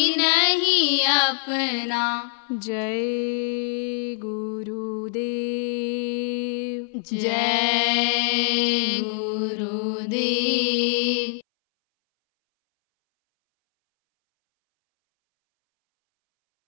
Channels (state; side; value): silent; right; 61 dB below the other